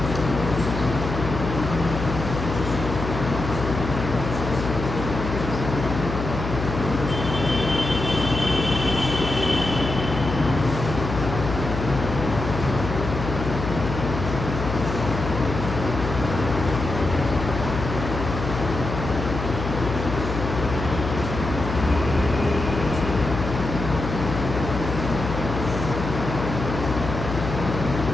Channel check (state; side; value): noise; left; hum, 5 dB below the sound